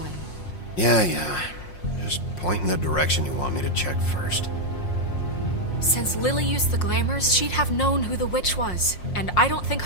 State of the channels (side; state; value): right; late; 5.6 ms